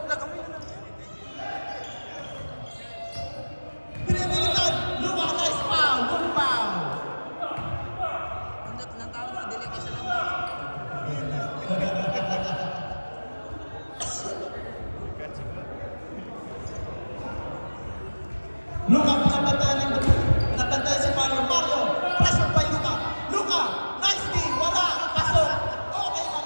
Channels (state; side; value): inverted; both; correlation -1.00